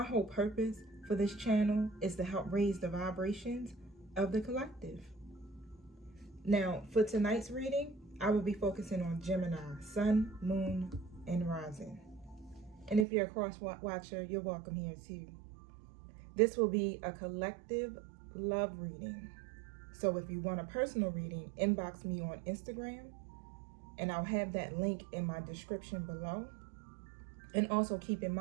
whole purpose for this channel is to help raise the vibrations of the collective. Now, for tonight's reading, I will be focusing on Gemini, Sun, Moon, and Rising. And if you're a cross-watcher, you're welcome here too. This will be a collective love reading. So if you want a personal reading, inbox me on Instagram, and I'll have that link in my description below. And also keep in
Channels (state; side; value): drops out; left; at 13.1 s